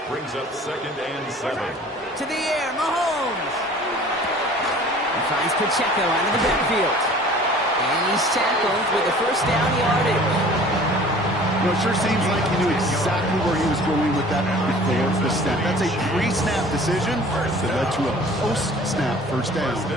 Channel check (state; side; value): normal; both; correlation 0.48